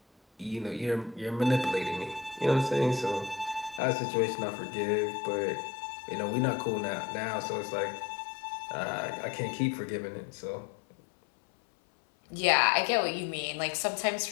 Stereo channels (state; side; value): drops out; right; at 3.8 s